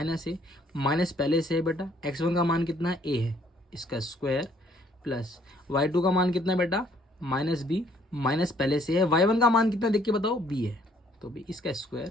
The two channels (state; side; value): normal; both; correlation 0.64